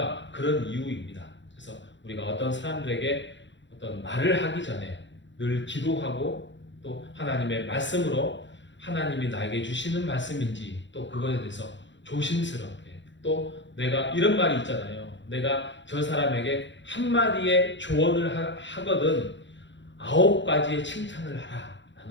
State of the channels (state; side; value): late; right; 0.53 ms